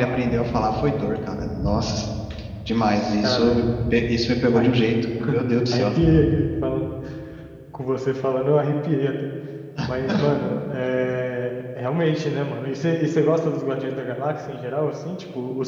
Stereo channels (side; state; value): both; identical; correlation 1.00